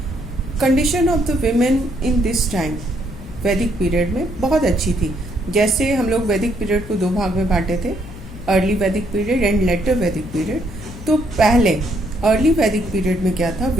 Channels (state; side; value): noise; left; hum, 15 dB below the sound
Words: condition of the women in this time वैदिक पीरियड में बहुत अच्छी थी. जैसे हम लोग वैदिक पीरियड को दो भाग में बांटे थे, अर्ली वैदिक पीरियड एंड लेटर वैदिक पीरियड. तो पहले अर्ली वैदिक पीरियड में क्या था,